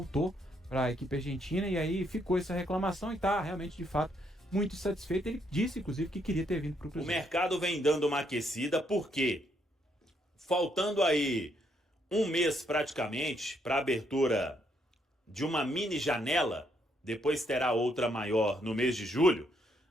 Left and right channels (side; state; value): both; normal; correlation 0.73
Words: para a equipe argentina, e aí ficou essa reclamação e está realmente, de fato, muito satisfeito. Ele disse, inclusive, que queria ter vindo para o Cruzeiro. O mercado vem dando uma aquecida, porque faltando aí um mês praticamente para a abertura de uma mini janela, depois terá outra maior no mês de julho,